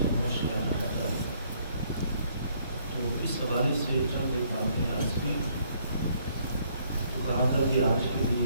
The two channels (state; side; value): inverted; both; correlation -0.66